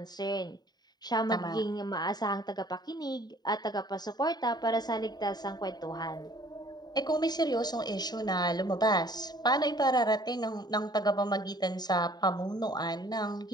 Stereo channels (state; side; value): late; right; 0.20 ms